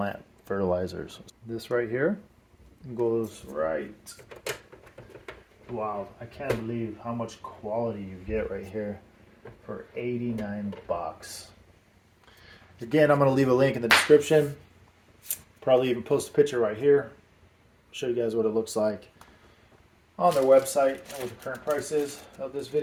fertilizers. This right here goes right. Wow, I can't believe how much quality you get right here for 89 bucks. Again, I'm going to leave a link in the description. Probably even post a picture right here. Show you guys what it looks like on their website and what the current price is of this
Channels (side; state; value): both; identical; correlation 1.00